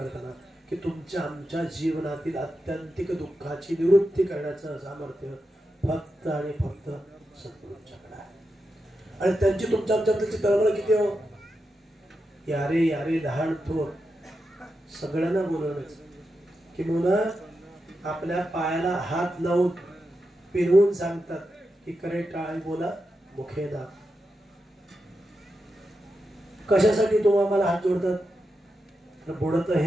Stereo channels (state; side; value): normal; both; correlation 0.88